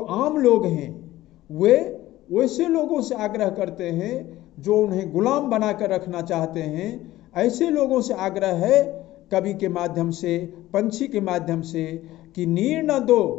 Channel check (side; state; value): right; quieter; 15.8 dB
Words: लोग हैं वे वैसे लोगों से आग्रह करते हैं जो उन्हें गुलाम बनाकर रखना चाहते हैं। ऐसे लोगों से आग्रह है कवि के माध्यम से, पंछी के माध्यम से, कि नीर न दो